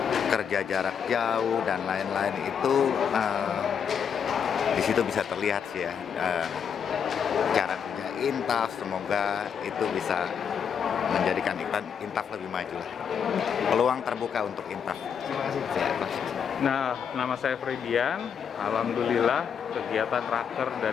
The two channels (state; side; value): quieter; right; 7.4 dB